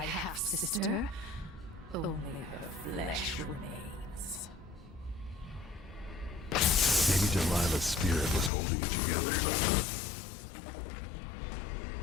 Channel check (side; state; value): right; drops out; at 8.5 s